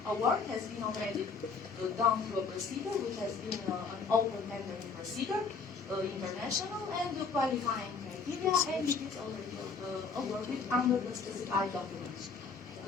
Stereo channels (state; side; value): quieter; right; 5.0 dB